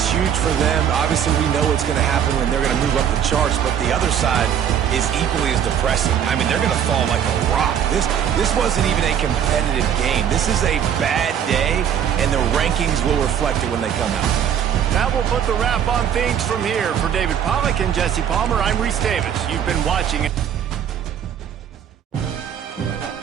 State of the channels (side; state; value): left; quieter; 9.0 dB